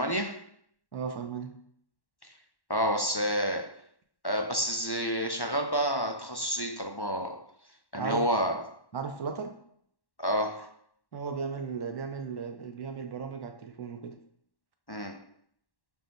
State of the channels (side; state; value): right; late; 1.1 ms